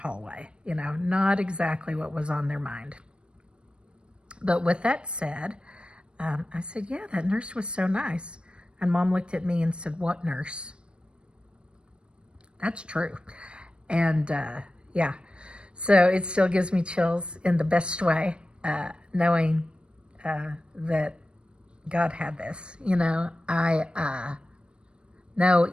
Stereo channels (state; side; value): late; left; 0.056 ms